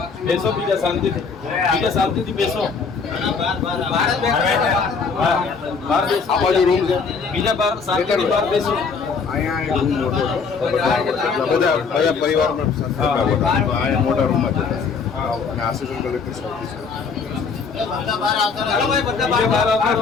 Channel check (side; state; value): right; quieter; 5.2 dB